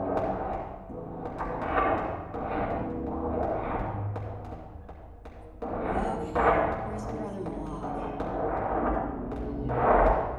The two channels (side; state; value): both; identical; correlation 1.00